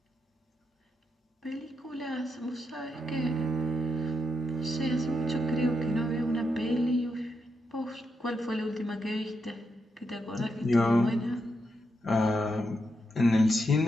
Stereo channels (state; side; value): normal; both; correlation 0.83